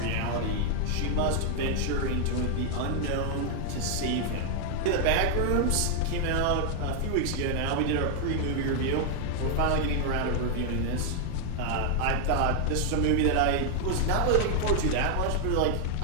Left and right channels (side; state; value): both; different; correlation 0.00